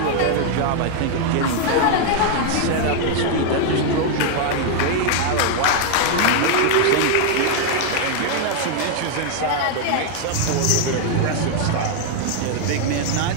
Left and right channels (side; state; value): both; different; correlation 0.00